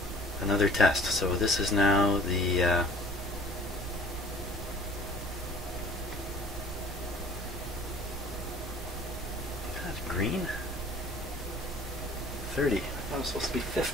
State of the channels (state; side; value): normal; both; correlation 0.50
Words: test. So this is now the that's green. 30. I thought it was supposed to be